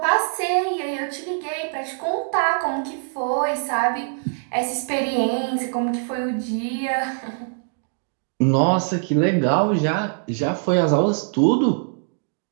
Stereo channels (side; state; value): left; silent; digital silence